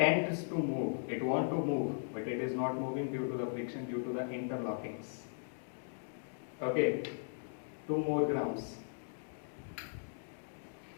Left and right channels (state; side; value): silent; right; digital silence